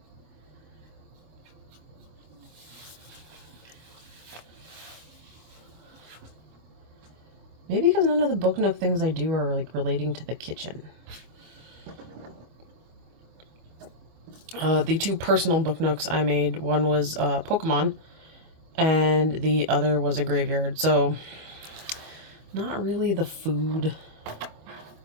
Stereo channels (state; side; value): late; left; 25 ms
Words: Maybe because none of the book nook things I do are like relating to the kitchen. The two personal book nooks I made, one was Pokemon, and the other was a graveyard. So not really the food